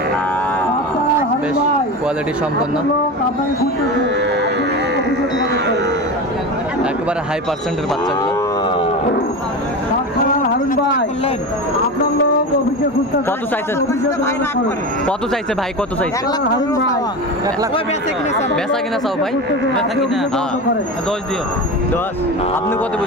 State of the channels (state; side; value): normal; both; correlation 0.25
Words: বেশ কোয়ালিটি সম্পন্ন, একেবারে হাই পার্সেন্টের বাচ্চাগুলো। হারুন ভাই, আপনার লোক অফিসে কত চাইছে কত চাইছে ভাই কত চাইছে বেচা কিনা চাও ভাই দশ দিও 10 আপনি কত